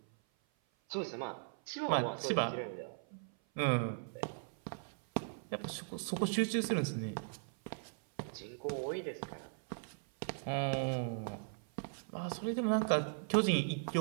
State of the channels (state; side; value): silent; left; 52 dB below the other